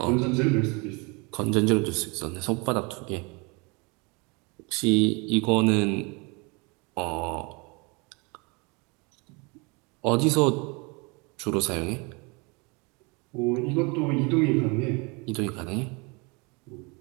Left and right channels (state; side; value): quieter; left; 29.4 dB